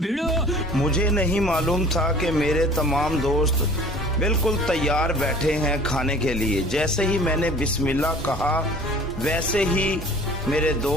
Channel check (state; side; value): normal; both; correlation 0.48